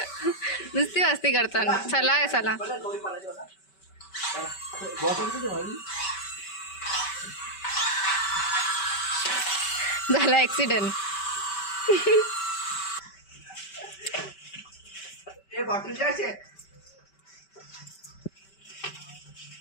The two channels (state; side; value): late; right; 5.2 ms